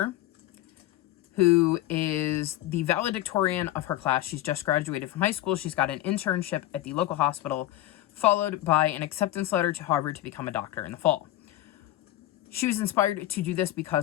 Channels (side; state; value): right; quieter; 14.3 dB